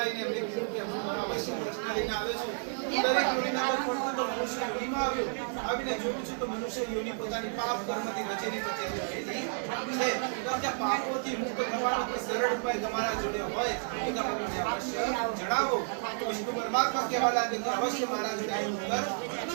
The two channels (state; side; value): silent; left; digital silence